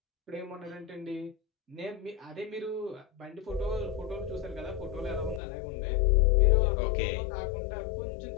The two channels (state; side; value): drops out; right; at 5.4 s